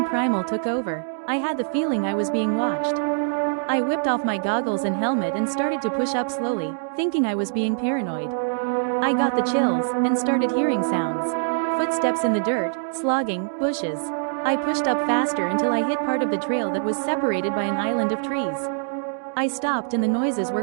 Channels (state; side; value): silent; left; digital silence